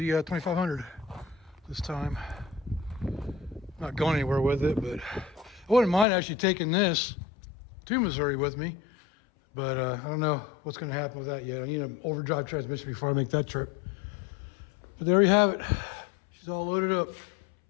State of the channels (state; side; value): drops out; right; at 6.1 s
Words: this time. Not going anywhere with it, but I wouldn't mind actually taking this to Missouri with me. But I don't know what's going to happen with that yet. I need an overdrive transmission before I make that trip. But there you have it. She's all loaded up.